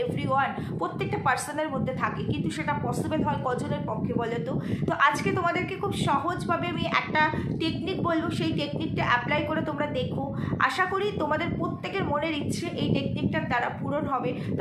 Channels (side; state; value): both; identical; correlation 1.00